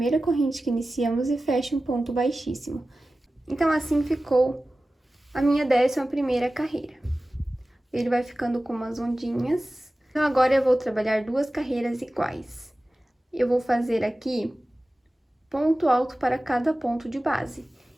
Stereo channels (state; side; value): normal; both; correlation 0.96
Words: corrente que iniciamos e fecho um ponto baixíssimo. Então, assim ficou a minha 11ª carreira. Ele vai ficando com umas ondinhas. Então, agora eu vou trabalhar 2 carreiras iguais. Eu vou fazer aqui ponto alto para cada ponto de base.